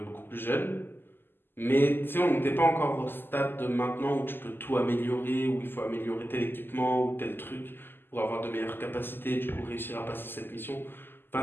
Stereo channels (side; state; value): right; late; 0.098 ms